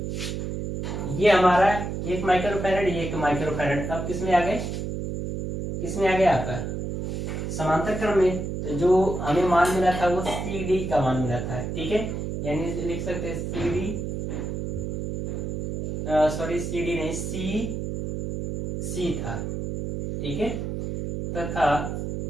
ये हमारा 1 माइक्रोफैरड, ये 1 माइक्रोफैरड अब किस में आ गए, आपका समांतर क्रम में। तो जो हमें मान मिला था वो CD का मान मिला था, ठीक है। यानी लिख सकते हैं CD नहीं, C था, ठीक है। तथा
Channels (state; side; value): noise; right; hum, 3 dB below the sound